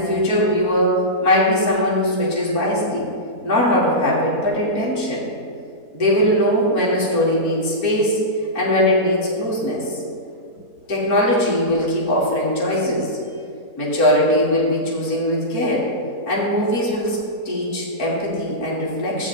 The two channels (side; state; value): right; late; 4.4 ms